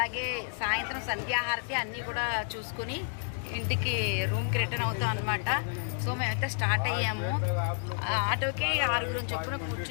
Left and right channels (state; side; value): silent; right; 57 dB below the other